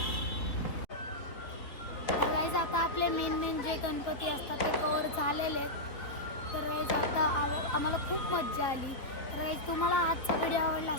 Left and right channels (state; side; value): late; right; 3.4 ms